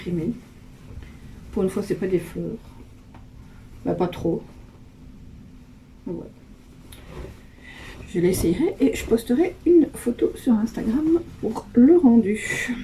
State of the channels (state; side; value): identical; both; correlation 1.00